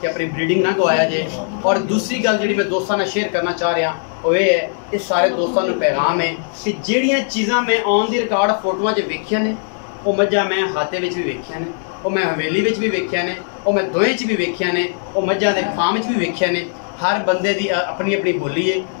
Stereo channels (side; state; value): right; silent; 67 dB below the other